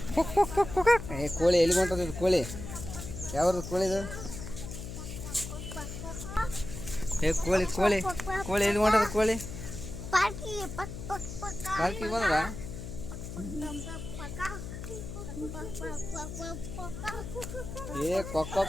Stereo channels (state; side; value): noise; left; hum, 8 dB below the sound